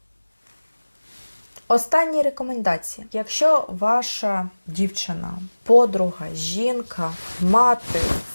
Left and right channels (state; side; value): inverted; both; correlation -1.00